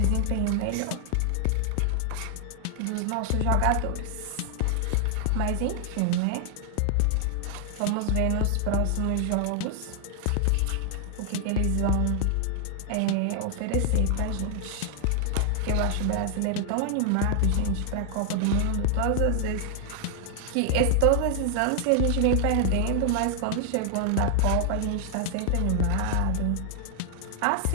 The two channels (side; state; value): both; different; correlation 0.00